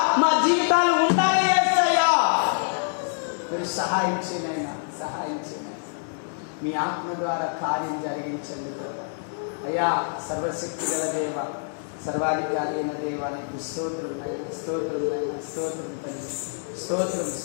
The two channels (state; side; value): silent; right; digital silence